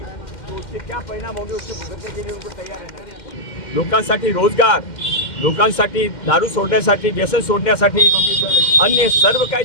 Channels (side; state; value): right; late; 2.1 ms